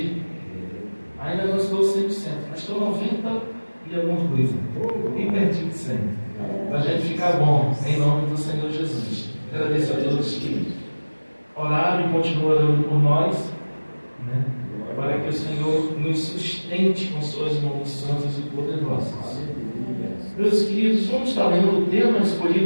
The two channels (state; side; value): inverted; both; correlation -1.00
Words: Ainda não estou 100%, mas estou 90% e alguma coisa. Bem pertinho de 100%. Para a gente ficar bom, em nome do Senhor Jesus. Agradeço a todos que oraram e continuam orando por nós, né? Para que o Senhor nos sustente com suas mãos santas e poderosas. Meus queridos, vamos estar lendo o tema